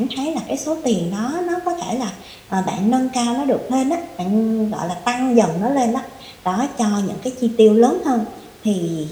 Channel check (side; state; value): both; identical; correlation 1.00